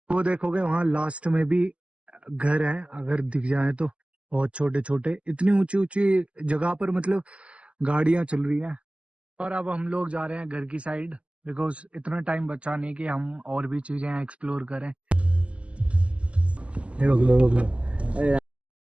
वो देखोगे वहाँ लास्ट में भी घर है, अगर दिख जाए तो बहुत छोटे छोटे, इतनी ऊंची ऊंची जगह पर मतलब गाड़ियां चल रही हैं। और अब हम लोग जा रहे हैं घर की साइड, बिकॉज इतना टाइम बचा नहीं कि हम और भी चीजें एक्सप्लोर करें।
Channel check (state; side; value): late; left; 0.058 ms